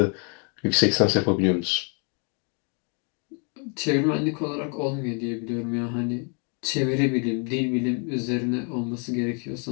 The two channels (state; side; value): quieter; right; 38.9 dB